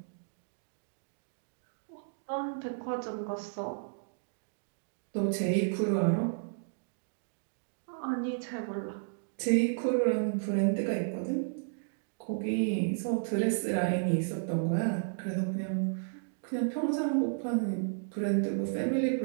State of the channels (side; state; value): left; silent; digital silence